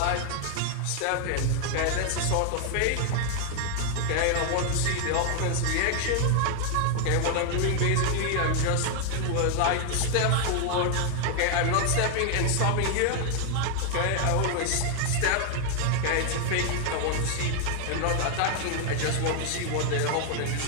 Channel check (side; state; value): both; different; correlation 0.00